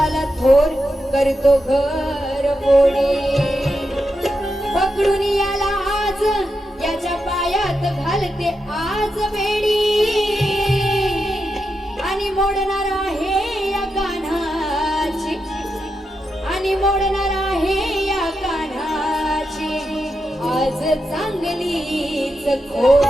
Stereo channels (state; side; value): normal; both; correlation 0.86